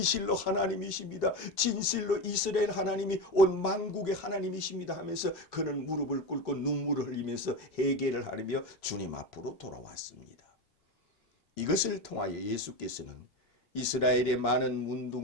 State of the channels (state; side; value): normal; both; correlation 0.20